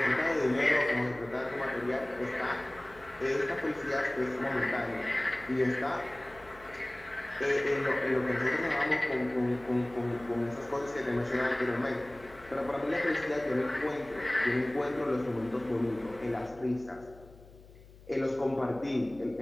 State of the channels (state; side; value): noise; left; hum, 22 dB below the sound